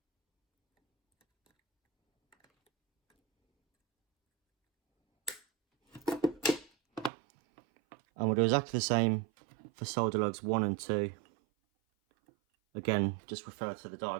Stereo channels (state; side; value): drops out; left; at 7.1 s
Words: And we'll do exactly the same for solder lugs 1 and 2. Again, just refer to the